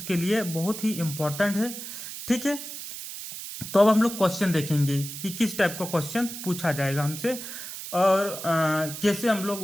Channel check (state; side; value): noise; right; hiss, 9 dB below the sound